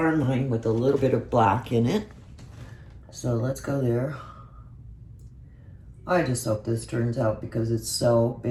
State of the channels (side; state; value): both; identical; correlation 1.00